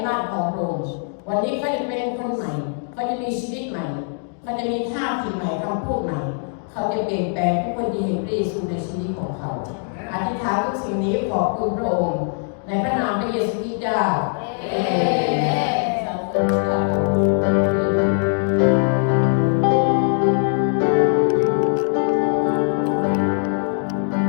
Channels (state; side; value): silent; right; 57 dB below the other